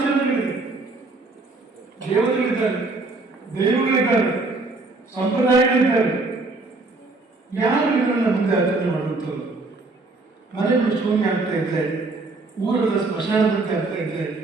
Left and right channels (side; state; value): left; quieter; 3.4 dB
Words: ದೇವತೆಗಳಿದ್ದಾರೆ, ದೈವಗಳಿದ್ದಾರೆ, ಸಂಪ್ರದಾಯಗಳಿದ್ದಾರೆ. ಯಾರು ಇದನ್ನ ಮುಂದೆ ಆಚರಣೆ ಮಾಡುವಂಥವ್ರು? ಮನೆಗಳು ಶೂನ್ಯ ಆಗ್ತಾ ಇದ್ರೆ, ಊರದ ಸ್ಮಶಾನದಂತೆ ಆಗ್ತಾ ಇದ್ರೆ